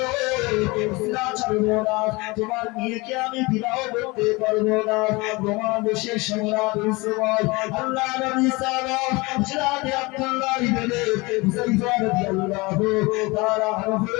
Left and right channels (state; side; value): quieter; right; 24.5 dB